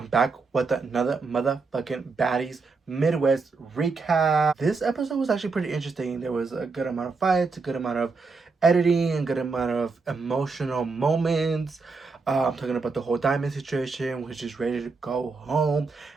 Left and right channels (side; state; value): left; quieter; 4.3 dB